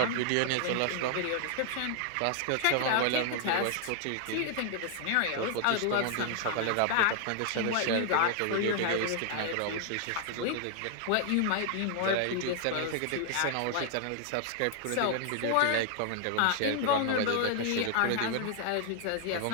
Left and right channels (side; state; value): both; different; correlation 0.00